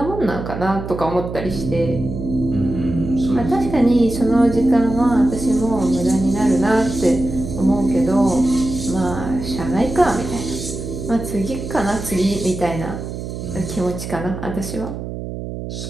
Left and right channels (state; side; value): noise; right; hum, 7 dB below the sound